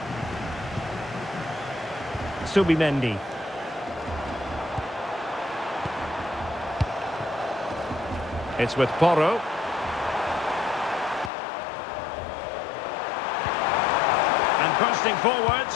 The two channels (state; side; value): drops out; right; at 11.3 s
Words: Subimendi. It's with Porro. And bursting forward.